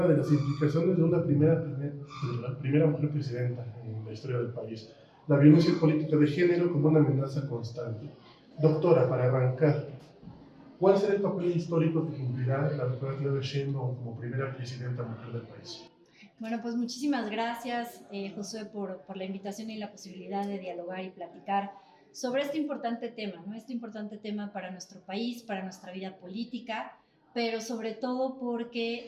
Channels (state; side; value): identical; both; correlation 1.00